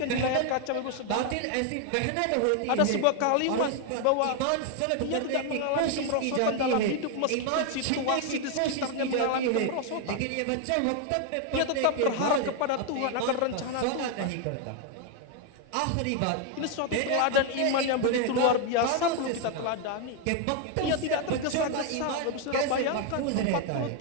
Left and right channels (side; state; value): both; different; correlation 0.01